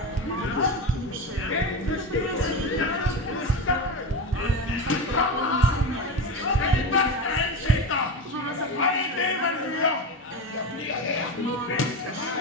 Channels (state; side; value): normal; both; correlation 0.21